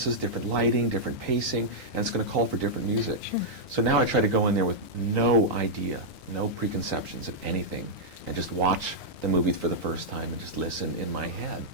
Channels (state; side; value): normal; both; correlation -0.07